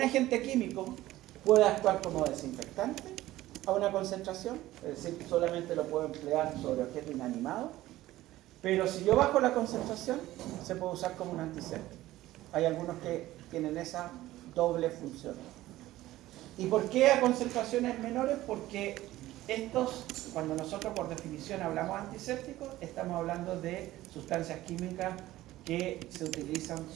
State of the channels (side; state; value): left; quieter; 15.9 dB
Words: agente químico puede actuar como desinfectante a una concentración, es decir, solamente lo puedo emplear sobre objetos inanimados, pero si yo bajo la concentración, se puede usar como un antiséptico. Hay algunos que tienen esa doble función. ¿Y por qué a concentraciones menores? Porque estos, cuando nosotros por definición hablamos de antisépticos, estamos hablando de sustancias químicas que se utilizan